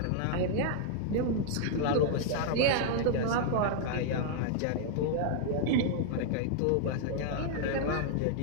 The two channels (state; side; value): different; both; correlation -0.01